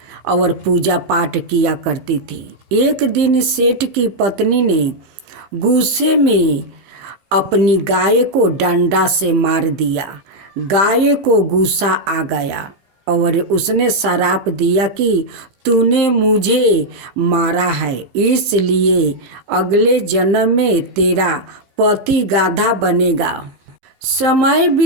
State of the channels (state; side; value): late; left; 15 ms